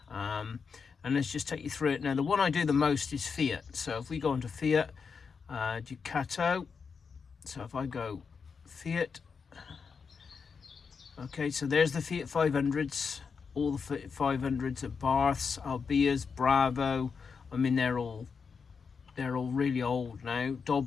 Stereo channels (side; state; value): right; quieter; 5.6 dB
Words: and let's just take you through it. Now the one I do the most is Fiat, so if we go into Fiat, Ducato, so if I go Fiat, okay, so there's the Fiat 500s, all the Fiat 500s at Baths, Albias, Bravo. I mean, they're all really old now,